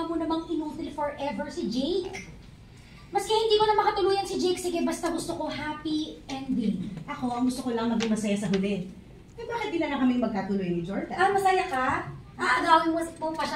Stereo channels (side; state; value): both; identical; correlation 1.00